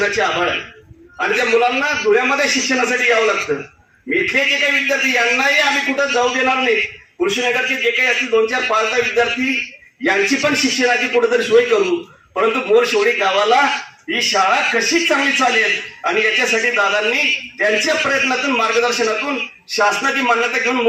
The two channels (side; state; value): both; identical; correlation 1.00